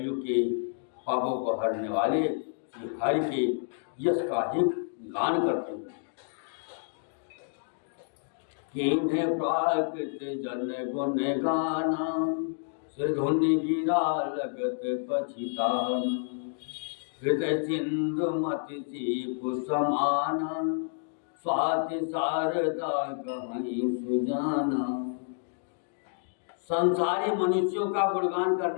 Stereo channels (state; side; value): silent; right; digital silence